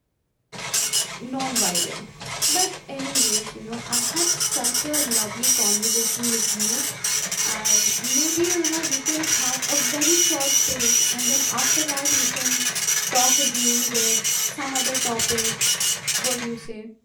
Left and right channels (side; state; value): both; identical; correlation 1.00